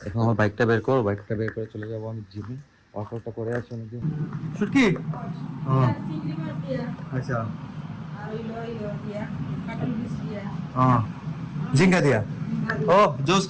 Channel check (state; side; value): identical; both; correlation 1.00